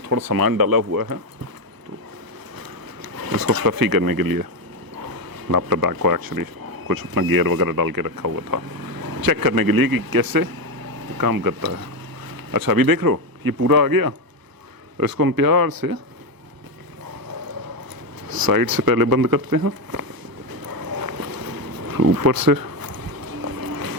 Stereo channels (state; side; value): late; left; 1.0 ms